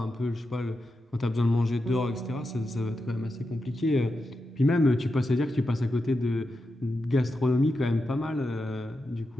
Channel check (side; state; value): both; normal; correlation 0.88